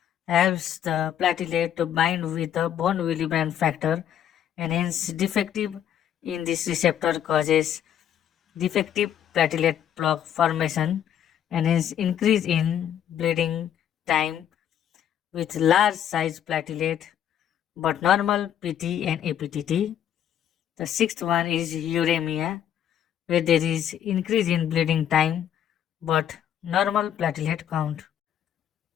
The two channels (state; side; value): quieter; right; 10.0 dB